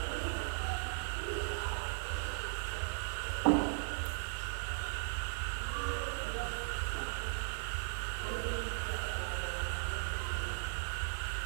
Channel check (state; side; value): silent; left; 53 dB below the other